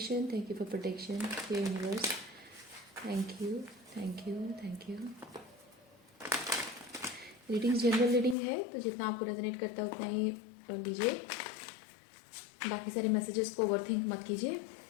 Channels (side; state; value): right; drops out; at 8.3 s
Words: thank you for protection. Dear universe, thank you, thank you, thank you. Reading general reading है, तो जितना आपको resonate करता है उतना ही लीजिए। बाकी सारे मैसेजेस को ओवरथिंक मत कीजिए,